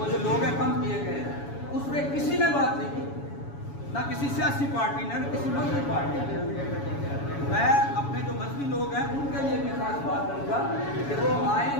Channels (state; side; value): late; right; 7.1 ms